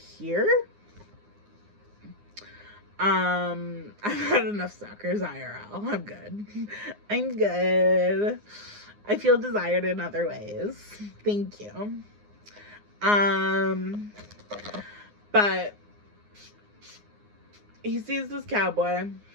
I've had enough suckers IRL. I'm good. I'm good. I feel desired in other ways. Thank you. But he sees this cowboy.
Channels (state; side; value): late; left; 9.7 ms